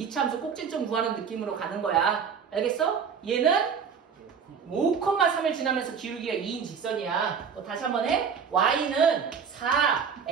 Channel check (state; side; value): quieter; left; 6.6 dB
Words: 함수 꼭지점 구하는 느낌으로 가는 거야. 알겠어? 얘는 5,3을 지나면서 기울기가 2인 직선이야. 또 다시 한번 해. y는 4,